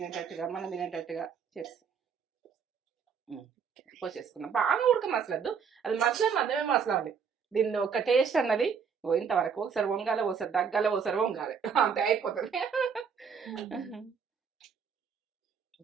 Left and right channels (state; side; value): quieter; left; 6.5 dB